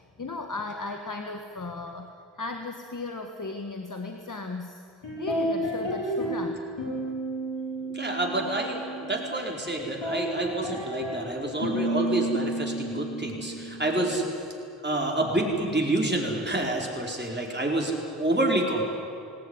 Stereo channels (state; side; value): normal; both; correlation 0.36